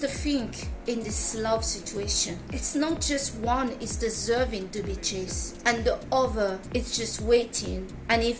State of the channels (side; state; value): both; identical; correlation 1.00